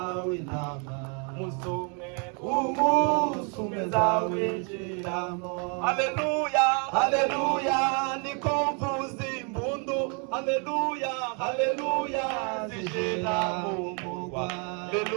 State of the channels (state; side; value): quieter; left; 36.9 dB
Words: intama umunsi umwe zawinjiramo. Haleluya, haleluya, niko mvuza imbundu. Haleluya, haleluya, zishira mu murwa.